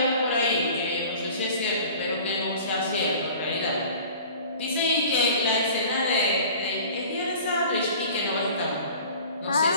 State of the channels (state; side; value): inverted; both; correlation -0.44